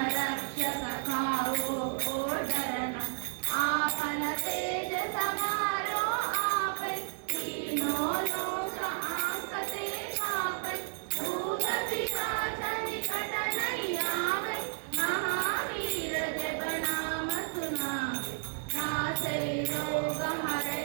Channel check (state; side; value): silent; left; 56 dB below the other